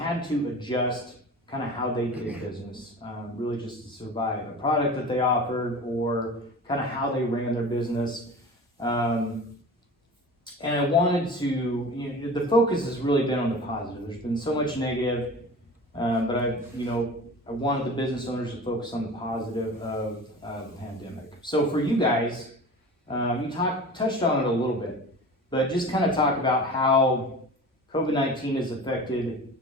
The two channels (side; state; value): both; normal; correlation 0.36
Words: to adjust kind of how they did business, really just to survive a product that they offered or kind of how they ran their business. And I wanted to, the focus has really been on the positive. There's been so much negative, but I wanted the business owners to focus on the positive of the pandemic. So for you guys, you touched on it a little bit, but just kind of talk about how COVID-19 has affected